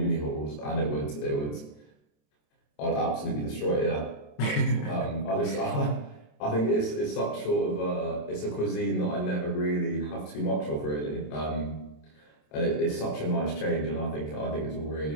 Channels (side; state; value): right; late; 27 ms